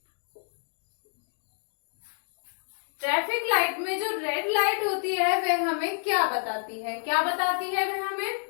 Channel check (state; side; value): silent; right; digital silence